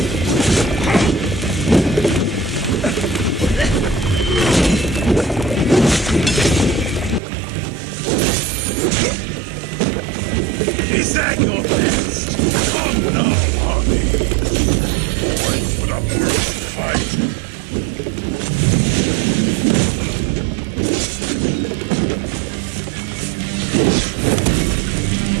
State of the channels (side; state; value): left; drops out; at 7.2 s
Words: Is that your best? Come now, Harvey. Wait for the mercy fight.